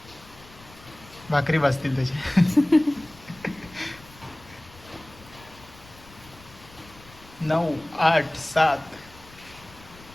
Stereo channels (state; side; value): noise; left; rumble, 22 dB below the sound